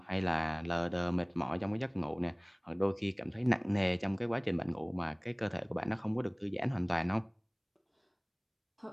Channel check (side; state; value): both; identical; correlation 1.00